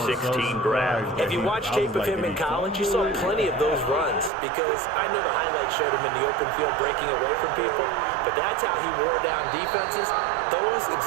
draft. If you watch tape of him in college, you saw plenty of those runs, because I know the highlights showed him in the open field breaking away from people, but that's how he wore down defenses, those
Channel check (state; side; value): drops out; left; at 4.3 s